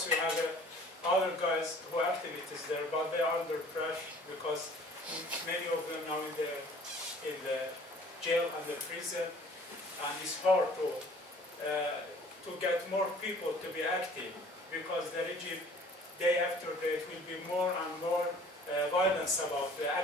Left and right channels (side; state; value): both; normal; correlation 0.51